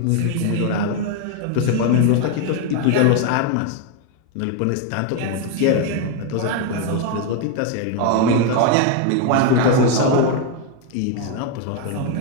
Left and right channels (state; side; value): different; both; correlation 0.01